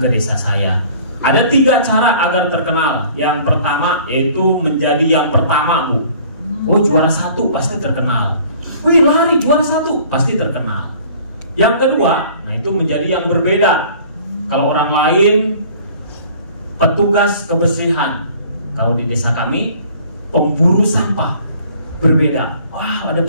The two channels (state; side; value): inverted; both; correlation -0.51